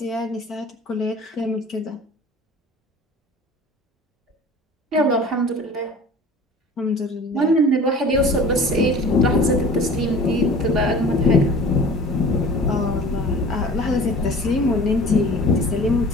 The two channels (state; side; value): normal; both; correlation 0.43